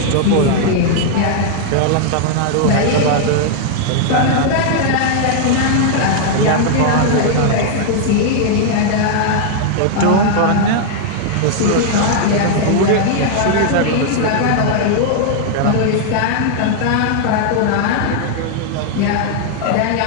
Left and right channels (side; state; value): both; different; correlation -0.01